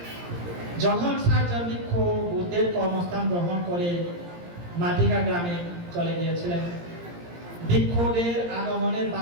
যখন ৬০ জন ভিক্ষু বুদ্ধের কর্মস্থান গ্রহণ করে মাটিকা গ্রামে চলে গিয়েছিলেন, ভিক্ষুদের আগমনের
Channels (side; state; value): left; late; 17 ms